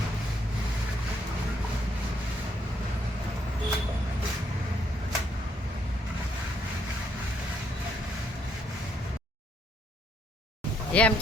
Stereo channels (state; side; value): normal; both; correlation 0.72